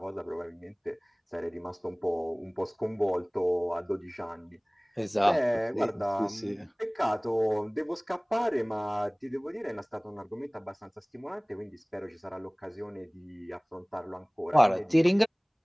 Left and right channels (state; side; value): identical; both; correlation 1.00